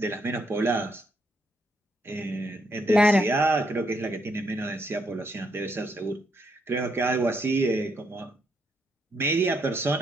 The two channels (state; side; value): normal; both; correlation 0.76